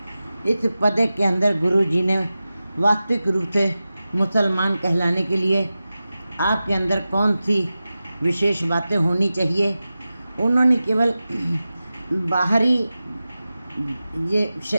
इस पद के अंदर गुरु जी ने वास्तविक रूप से मुसलमान कहलाने के लिए आपके अंदर कौन सी विशेष बातें होनी चाहिए, उन्होंने केवल बाहरी ये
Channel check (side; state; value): both; inverted; correlation -0.95